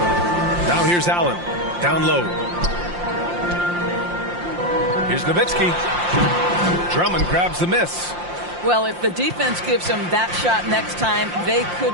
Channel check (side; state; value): left; late; 5.7 ms